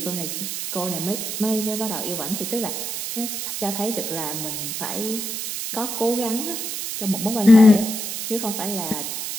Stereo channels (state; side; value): noise; right; hiss, 4 dB below the sound